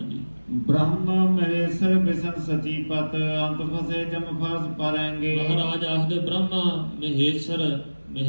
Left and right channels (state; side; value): inverted; both; correlation -1.00